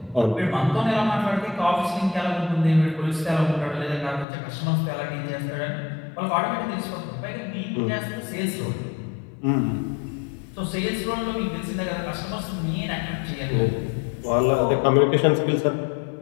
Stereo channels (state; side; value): drops out; right; at 4.2 s